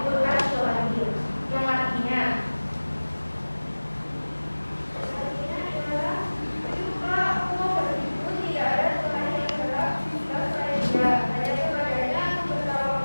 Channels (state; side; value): inverted; both; correlation -1.00